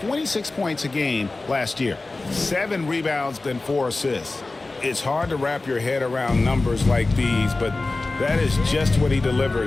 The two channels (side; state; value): right; quieter; 3.3 dB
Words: points a game last year, 7 rebounds and 4 assists. It's hard to wrap your head around numbers like these, but that is just what he